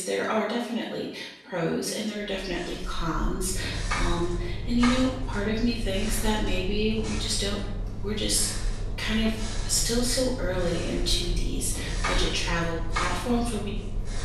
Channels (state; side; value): identical; both; correlation 1.00